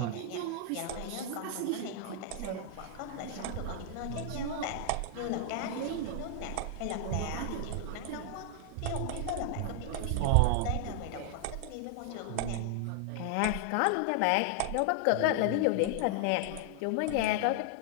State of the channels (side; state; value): both; different; correlation 0.00